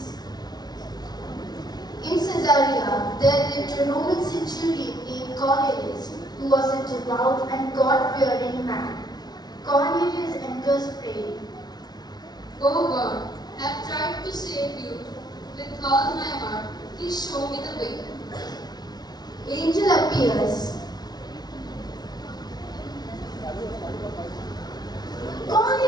In Caesarea, there lived a Roman centurion named Cornelius, who was a devout and God-fearing man. Cornelius enters praying. O God, I have tried to save you with all my heart. Please show me the way. Angel appears.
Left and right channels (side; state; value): right; late; 0.19 ms